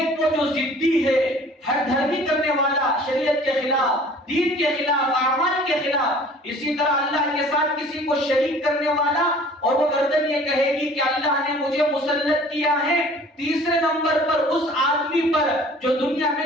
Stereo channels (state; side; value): normal; both; correlation 0.49